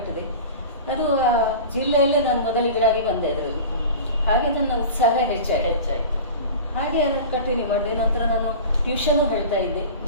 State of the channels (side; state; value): both; inverted; correlation -0.34